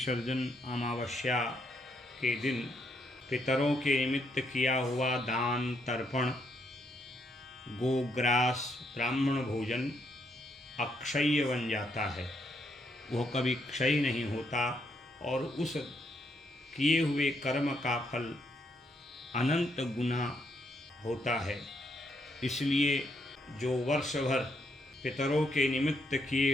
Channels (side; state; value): both; normal; correlation 0.75